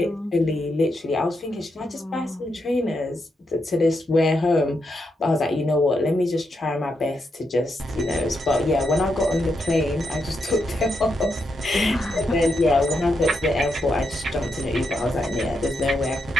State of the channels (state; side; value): normal; both; correlation 0.82